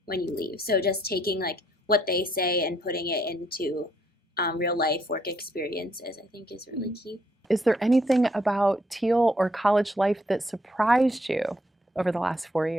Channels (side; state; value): both; normal; correlation 0.71